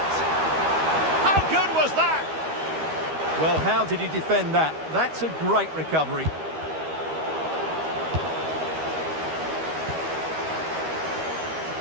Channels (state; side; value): late; left; 13 ms